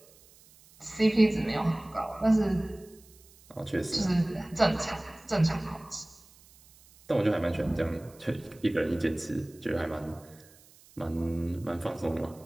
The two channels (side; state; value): right; noise; hiss, 26 dB below the sound